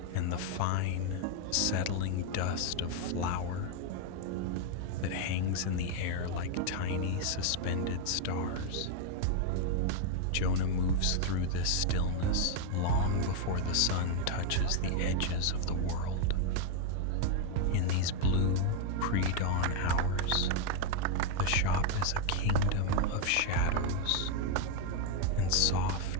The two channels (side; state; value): both; different; correlation 0.01